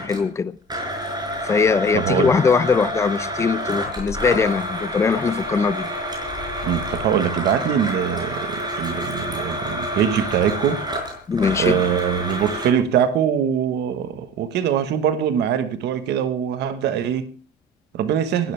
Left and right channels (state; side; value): normal; both; correlation 0.37